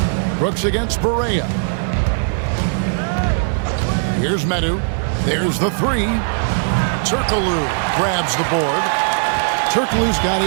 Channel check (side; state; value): left; silent; 67 dB below the other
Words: Brooks against Correa. Here's Medu. There's the 3. Turkoglu grabs the board. Turkoglu's got